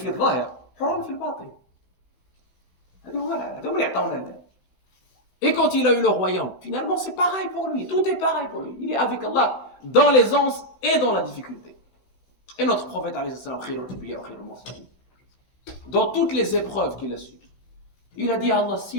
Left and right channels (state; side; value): late; right; 16 ms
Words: الظاهر حرا في الباطن. هذا اللي يعطونا الله. Et quand il a eu le royaume, finalement c'est pareil pour lui, tout est pareil pour lui. Il est avec Allah dans l'aisance et dans la difficulté. Et notre prophète, alayhi salam, khairul anbiya wa khairul mursalin, dans toutes les épreuves qu'il a subies, il a dit à Allah,